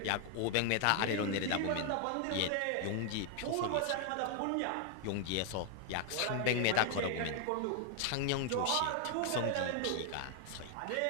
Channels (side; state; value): both; different; correlation 0.00